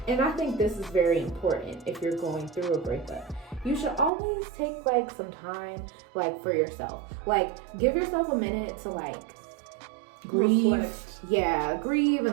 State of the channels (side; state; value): left; drops out; at 4.1 s